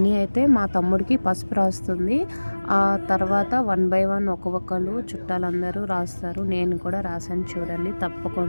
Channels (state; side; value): inverted; both; correlation -1.00